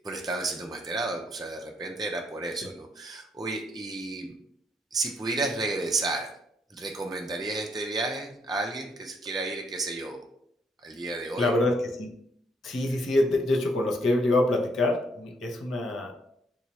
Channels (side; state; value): both; normal; correlation 0.71